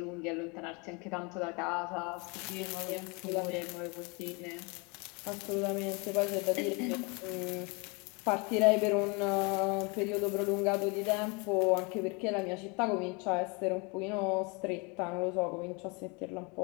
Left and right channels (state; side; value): quieter; right; 30.2 dB